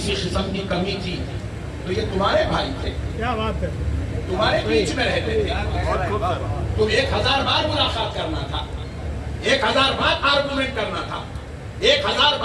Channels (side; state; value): both; identical; correlation 1.00